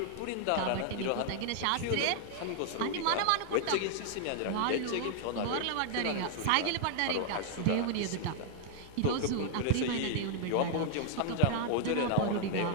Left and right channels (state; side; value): different; both; correlation -0.01